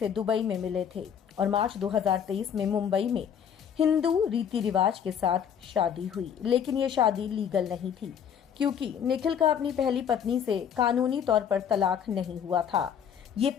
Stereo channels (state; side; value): quieter; right; 8.3 dB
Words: दुबई में मिले थे और मार्च 2023 में मुंबई में हिंदू रीति रिवाज के साथ शादी हुई। लेकिन ये शादी लीगल नहीं थी क्योंकि निखिल का अपनी पहली पत्नी से कानूनी तौर पर तलाक नहीं हुआ था। ये